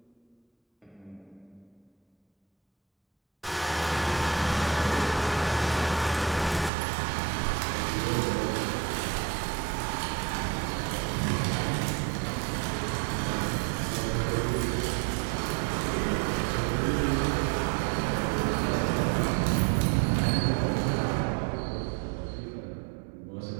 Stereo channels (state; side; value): drops out; left; at 6.7 s